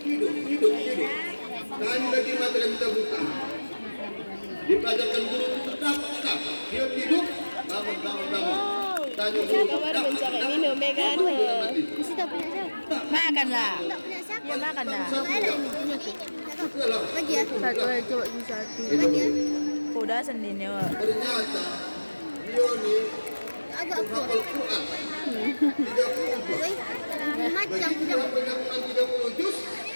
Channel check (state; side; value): inverted; both; correlation -1.00